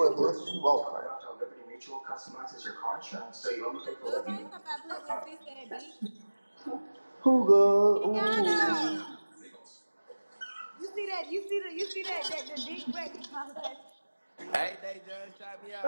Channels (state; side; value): inverted; both; correlation -1.00